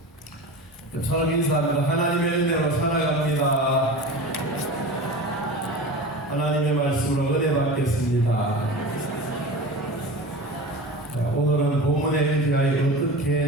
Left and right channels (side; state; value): both; normal; correlation 0.31